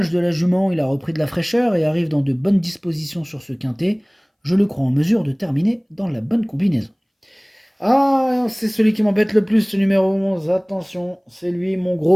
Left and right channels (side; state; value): both; identical; correlation 1.00